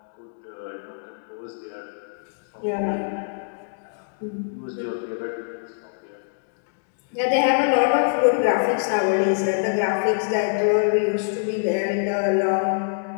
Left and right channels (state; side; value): silent; right; digital silence